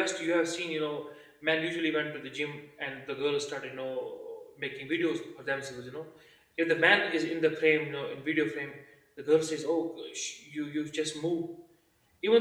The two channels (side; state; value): both; identical; correlation 1.00